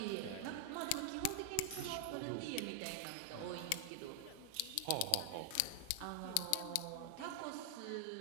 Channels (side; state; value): both; different; correlation 0.00